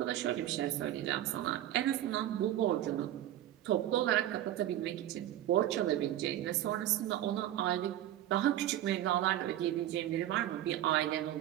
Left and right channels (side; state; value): left; quieter; 12.8 dB